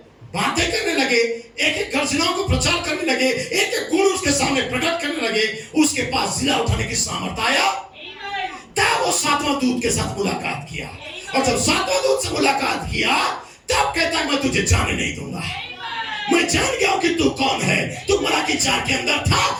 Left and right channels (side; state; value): both; identical; correlation 1.00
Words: बातें करने लगे, एक एक गर्जनाओं को प्रचार करने लगे, एक एक गुण उसके सामने प्रकट करने लगे। उसके पास जिला उठाने की सामर्थ आया, तब वो 7वां दूत के साथ मुलाकात किया, और जब 7वां दूत से मुलाकात किया, तब कहता है मैं तुझे जाने नहीं दूंगा, मैं जान गया हूं कि तू कौन है। तू मलाकी 4 के अंदर था,